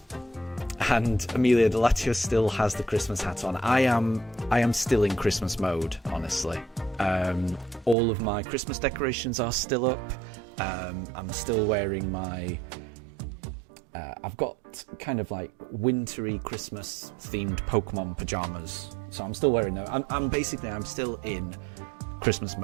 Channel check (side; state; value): left; drops out; at 8.0 s